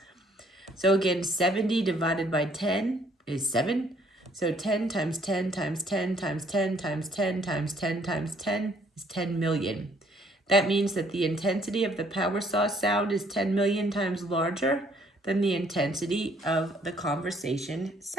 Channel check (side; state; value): both; normal; correlation 0.64